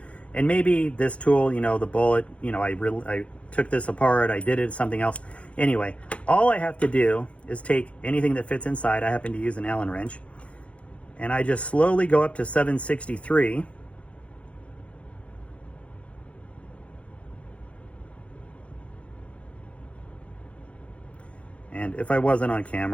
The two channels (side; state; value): right; late; 0.062 ms